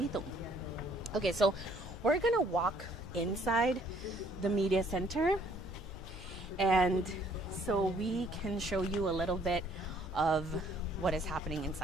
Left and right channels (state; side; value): normal; both; correlation 0.62